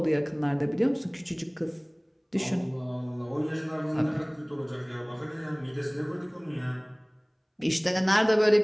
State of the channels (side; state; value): both; identical; correlation 1.00